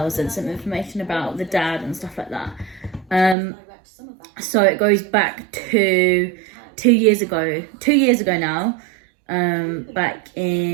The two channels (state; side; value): drops out; left; at 3.4 s